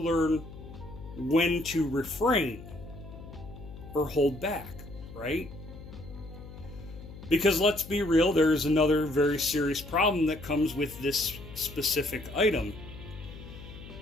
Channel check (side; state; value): left; noise; hum, 15 dB below the sound